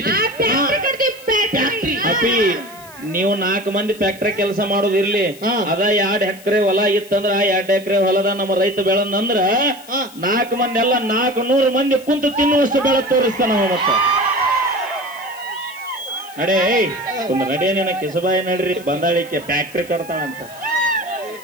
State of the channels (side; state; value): left; noise; hiss, 21 dB below the sound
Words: ಅಪ್ಪಿ ನೀವು 4 ಮಂದಿ ಫ್ಯಾಕ್ಟ್ರಿ ಕೆಲಸ ಮಾಡೋದು ಇರ್ಲಿ. ಅದ 2 ಎಕರೆ ಹೊಲ ಇತ್ತಂದ್ರ ಆ 2 ಎಕರೆ ಹೊಲದ ನಮ್ಮ ರೈತ ಬೆಳಂದ್ರ 4 ಮಂದಿ ಎಲ್ಲ 400 ಮಂದಿ ಕುಂತು ತಿನ್ನುವಷ್ಟು ಬೆಳೆ ತೋರಿಸ್ತಾನ ಮತ್ತ. ನಡೇ ಒಂದು ನಡೇನೇನ ಕಿಸಬಾಯಿ ನಡ್ರಿ ಬಂದಾಳಿಕೆ ಫ್ಯಾಕ್ಟ್ರಿ ಕಟ್ತಾಳಂತ.